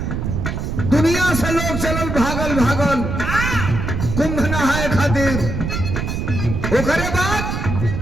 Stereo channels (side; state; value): right; noise; rumble, 3 dB below the sound